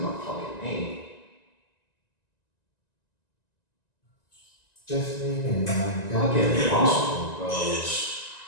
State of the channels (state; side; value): late; right; 1.9 ms